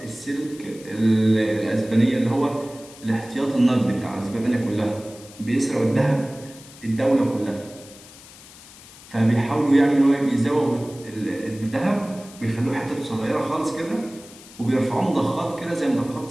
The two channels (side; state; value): left; noise; hiss, 20 dB below the sound